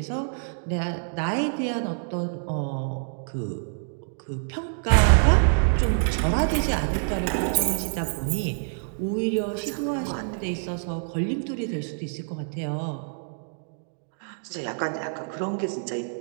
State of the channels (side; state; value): left; silent; digital silence